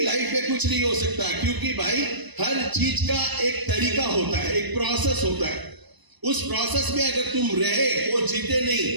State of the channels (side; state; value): left; late; 1.0 ms